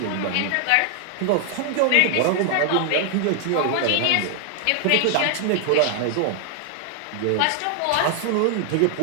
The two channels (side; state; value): both; different; correlation 0.00